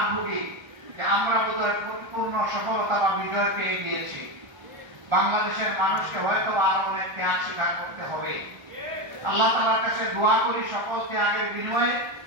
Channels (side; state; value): left; late; 1.3 ms